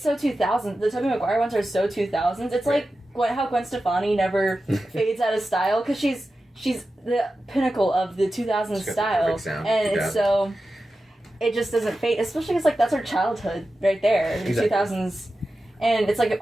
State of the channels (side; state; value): both; normal; correlation 0.93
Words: so 2000s. The Tobey Maguire ones are so 2000s. It's like how Gwen Stefani never fades out of style, because she's the pinnacle of the 2000s style, and it's so it just doesn't fade. Especially because, like, that's her childhood right there, the 2000s, and it's like